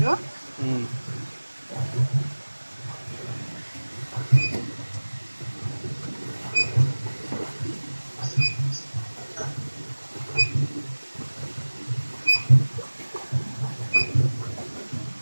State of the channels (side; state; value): both; inverted; correlation -1.00